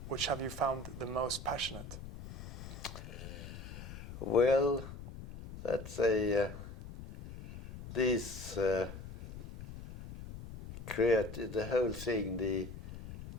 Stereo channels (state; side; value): noise; left; rumble, 11 dB below the sound